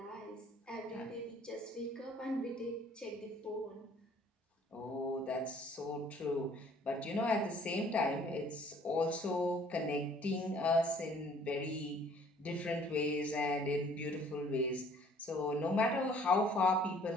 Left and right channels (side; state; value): both; normal; correlation 0.57